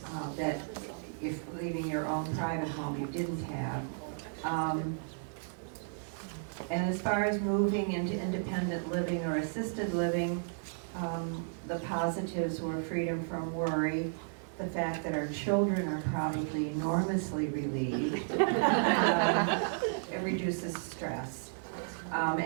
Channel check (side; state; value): left; silent; digital silence